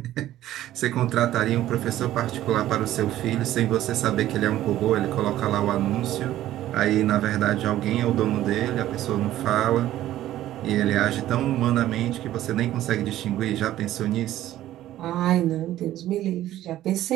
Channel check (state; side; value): quieter; left; 13.6 dB